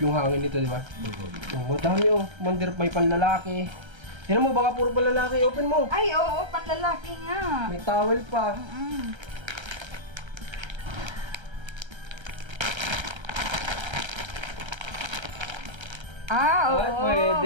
hangin nito, di ba? Oh, madami oh. Commander, may panlalaki. Tignan mo, baka puro panlalaki. Open mo. Ay, oo, panlalaki nga. May towel pa. Oo, Ay,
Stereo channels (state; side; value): late; left; 1.3 ms